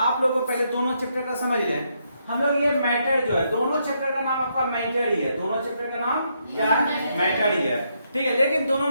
लोग को पहले दोनों चैप्टर का समझ लें। हम लोग ये मैटर जो है, दोनों चैप्टर का नाम आपका मैटर ही है। दोनों चैप्टर का नाम क्या है? मैटर ही है। ठीक है, लेकिन दोनों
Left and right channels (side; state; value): both; inverted; correlation -0.77